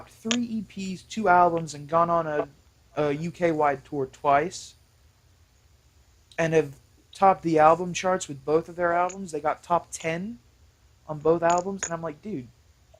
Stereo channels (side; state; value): both; identical; correlation 1.00